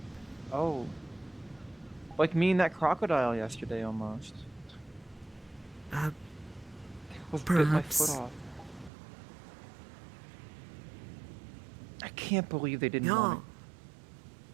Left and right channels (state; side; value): drops out; left; at 8.9 s